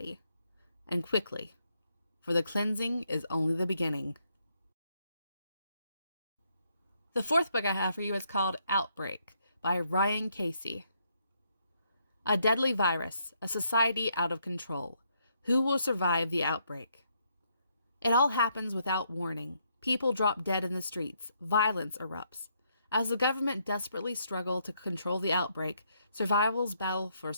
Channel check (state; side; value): inverted; both; correlation -0.74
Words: and quickly. For the cleansing is only the beginning. The fourth book I have for you is called Outbreak by Ryan Casey. A deadly virus, a society out of control. Who will survive the outbreak? It all happens without warning. People drop dead in the streets. Violence erupts. As the government desperately struggles to control the outbreak, survivors battle for